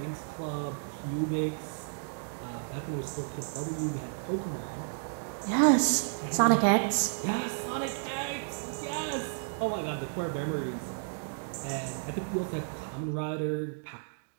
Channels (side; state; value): left; silent; digital silence